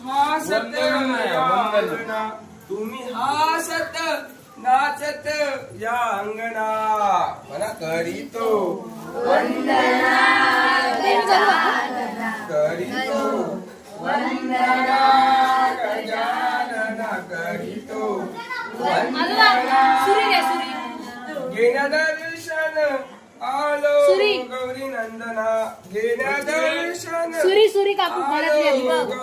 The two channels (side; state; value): both; identical; correlation 1.00